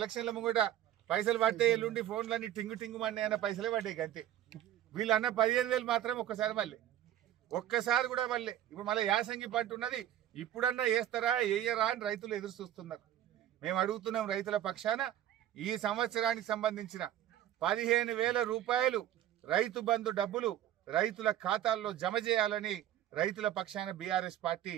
ముంగట పైసలు పట్టే ఎల్లుండి ఫోన్లన్నీ టింగు టింగు మన్నీ అన్న పైసలే పడ్డాయి అంతే. వీళ్ళు అన్న 15,000 మాత్రం ఒక్కసారి కూడా మళ్ళీ ఇప్పుడు మళ్ళీ యాసంగి పంట ఉన్నది, ఇప్పుడన్నా వేస్తారా వేయరా అని రైతులు ఎదురు చూస్తున్నారు. మేము అడుగుతున్నాం రైతుల పక్షాన ఈ సంవత్సరానికి సంబంధించిన 15,000 రూపాయలు రైతు బంధు డబ్బులు రైతుల ఖాతాల్లో జమ చేయాలని రైతుల పక్షాన బీఆర్ఎస్ పార్టీ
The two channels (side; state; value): left; quieter; 12.0 dB